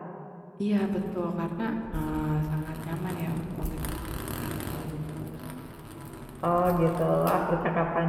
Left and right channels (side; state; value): both; identical; correlation 1.00